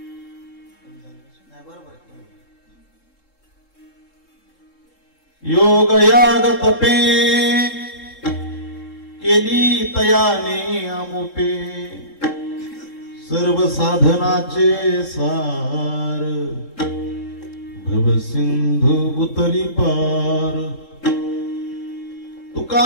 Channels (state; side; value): late; right; 3.7 ms